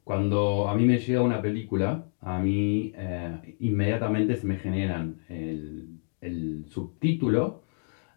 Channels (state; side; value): silent; right; digital silence